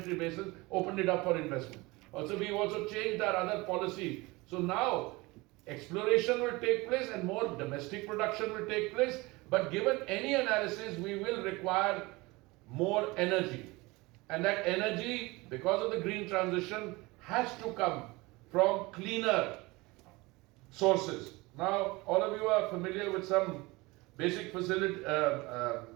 basin, opened it up for investment. We've also changed our other policy. So now exploration will take place and more domestic production will take place. But given any analysis, we will require more energy. And that energy, because of the green transition, has to come from cleaner sources. Now, all of you are familiar with some basic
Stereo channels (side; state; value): left; quieter; 22.9 dB